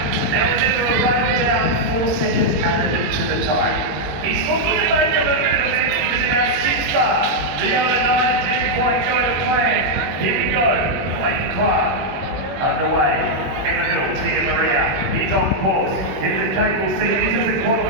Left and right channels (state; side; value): late; left; 21 ms